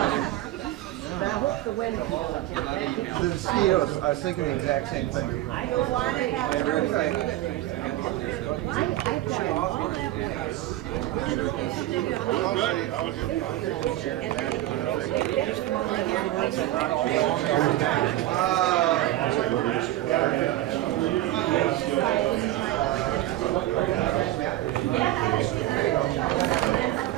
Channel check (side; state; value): left; quieter; 15.2 dB